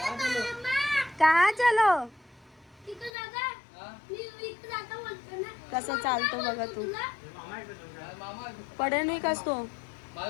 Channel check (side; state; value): right; drops out; at 3.1 s